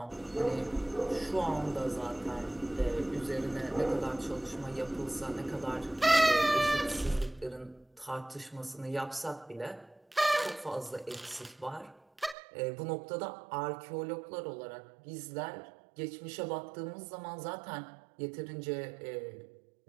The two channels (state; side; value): drops out; left; at 12.4 s